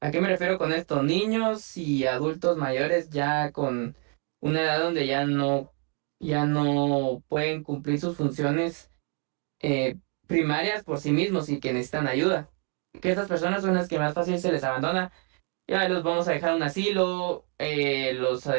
¿A qué me refiero con esto? Niños y adultos mayores ya con una edad donde ya no pueden cumplir sus funciones primarias por sí mismos y que necesitan ayuda. Que estas personas son las que más fácil se les abandona ya los vamos a dejar a un asilo, los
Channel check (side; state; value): left; quieter; 39.2 dB